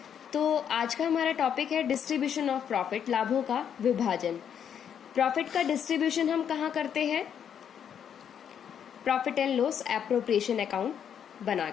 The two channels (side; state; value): right; quieter; 8.5 dB